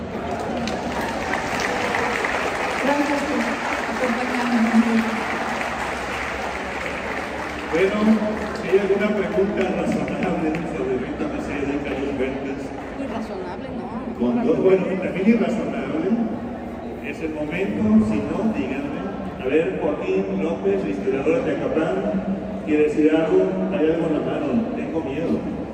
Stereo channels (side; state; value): both; identical; correlation 1.00